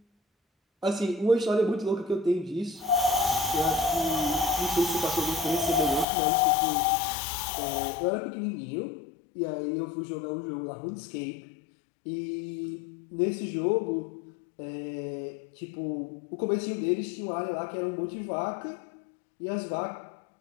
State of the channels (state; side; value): drops out; right; at 6.1 s